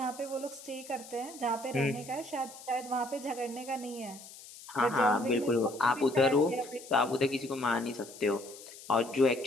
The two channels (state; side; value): noise; left; hiss, 17 dB below the sound